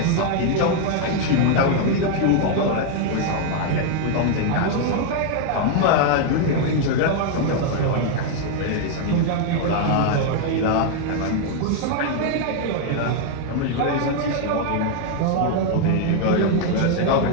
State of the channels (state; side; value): different; both; correlation 0.00